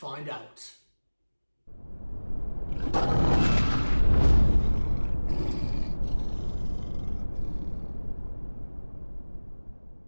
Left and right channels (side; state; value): both; inverted; correlation -1.00